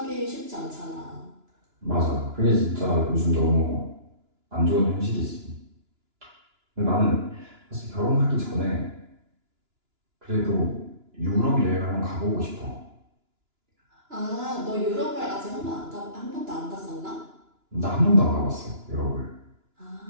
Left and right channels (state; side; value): late; left; 2.9 ms